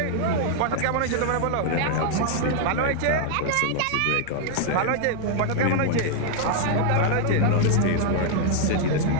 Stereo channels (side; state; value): both; different; correlation -0.01